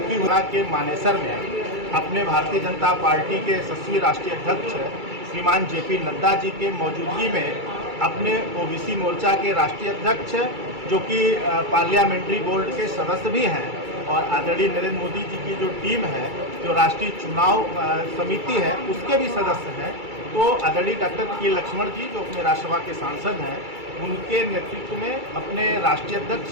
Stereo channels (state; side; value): late; left; 2.3 ms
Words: हुआ के मानेसर में अपने भारतीय जनता पार्टी के यशस्वी राष्ट्रीय अध्यक्ष श्रीमान जेपी नड्डा जी के मौजूदगी में अपने ओबीसी मोर्चा के राष्ट्रीय अध्यक्ष, जो कि पार्लियामेंट्री बोर्ड के सदस्य भी हैं, और आदरणीय नरेंद्र मोदी जी की जो टीम है, जो राष्ट्रीय चुनाव समिति है, उसके भी सदस्य हैं, तो आदरणीय डॉक्टर के लक्ष्मण जी, जो अपने राज्यसभा के सांसद हैं, उनके नेतृत्व में अपने राष्ट्रीय अध्यक्ष